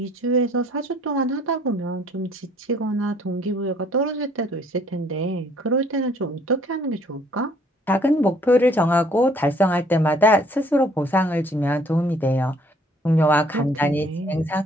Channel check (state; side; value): normal; both; correlation 0.60